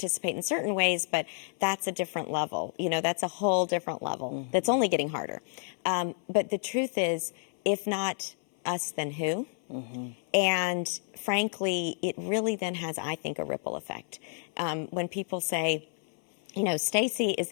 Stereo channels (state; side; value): silent; right; 57 dB below the other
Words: in certain ways, but that's a different level. That's a whole different level that's only getting harder. But the truth is, if not us, then who? And frankly, it really then has, I think, a ripple effect. When people say, Stacy